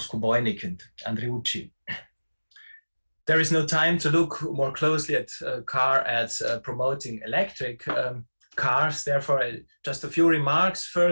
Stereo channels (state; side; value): inverted; both; correlation -1.00